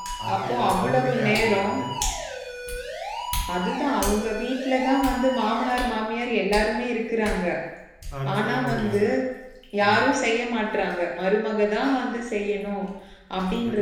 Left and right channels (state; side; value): identical; both; correlation 1.00